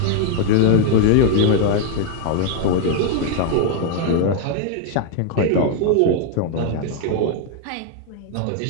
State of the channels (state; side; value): different; both; correlation 0.00